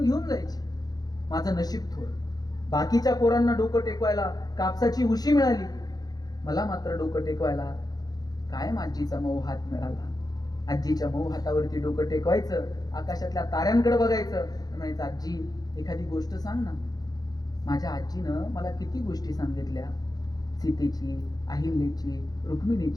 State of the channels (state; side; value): late; right; 0.19 ms